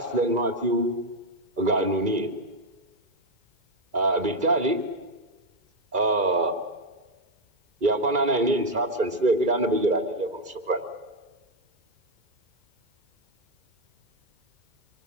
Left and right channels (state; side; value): late; left; 2.3 ms